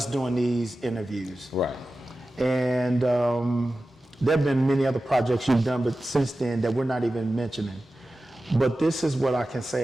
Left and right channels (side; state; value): both; normal; correlation 0.94